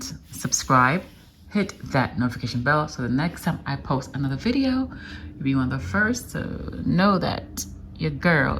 subscribe, hit that notification bell so the next time I post another video, you'll be one of the first to know that your girl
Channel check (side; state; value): both; identical; correlation 1.00